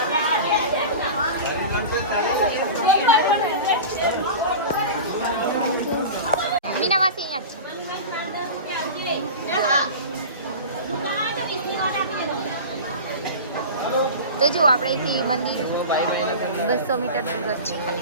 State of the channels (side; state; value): both; inverted; correlation -0.31